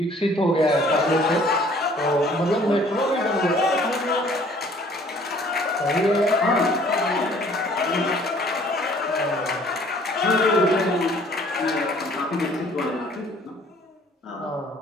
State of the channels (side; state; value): both; normal; correlation 0.56